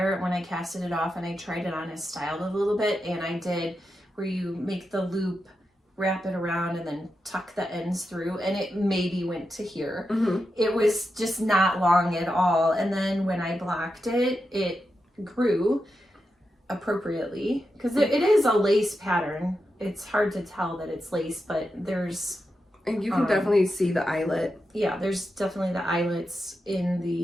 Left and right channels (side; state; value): both; normal; correlation 0.88